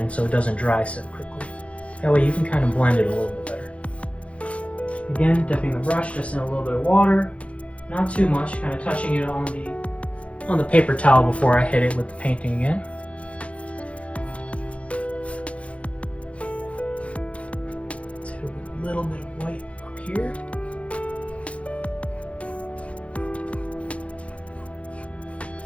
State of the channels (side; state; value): right; late; 0.063 ms